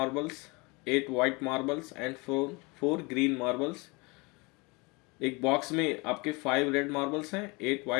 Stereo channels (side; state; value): right; quieter; 27.0 dB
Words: 8 white marbles and 4 green marbles. एक बॉक्स में आपके 5 रेड मार्बल्स हैं, 8